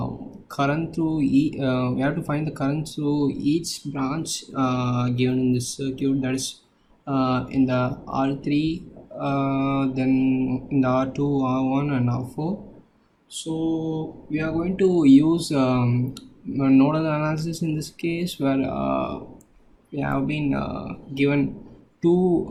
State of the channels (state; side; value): identical; both; correlation 1.00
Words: current through we have to find the current through each branch given in this circuit, that is in the R3, then in the R2, R1 and R4. So we are going to use a nodal analysis in this case, where we have been given two